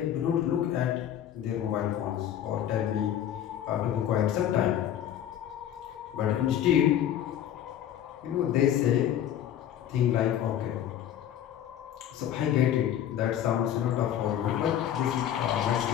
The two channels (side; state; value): right; quieter; 10.5 dB